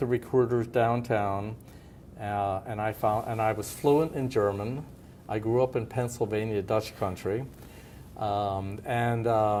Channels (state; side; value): identical; both; correlation 1.00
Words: recruiters downtown. And I was fluent in German. I grew up in Pennsylvania, Dutch country. So